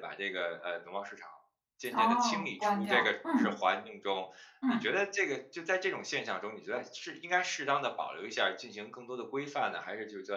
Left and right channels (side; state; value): both; identical; correlation 1.00